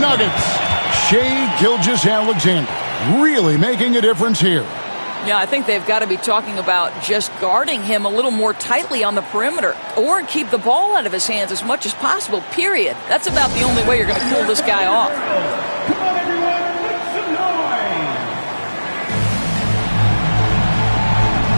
Shai Gilgeous-Alexander really making a difference here. Yeah, I think they've got to be talking about just guarding him a little more tightly on the perimeter or keep the ball out of his hands as much as possible, period. That's about the only way you're going to cool this guy off. Come on, everyone, make some noise.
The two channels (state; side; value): inverted; both; correlation -1.00